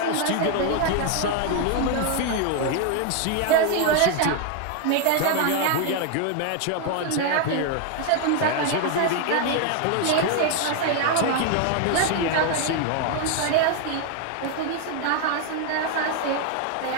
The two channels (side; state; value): both; different; correlation 0.01